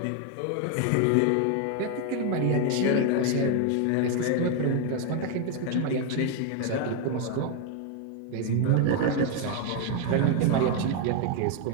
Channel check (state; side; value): different; both; correlation 0.01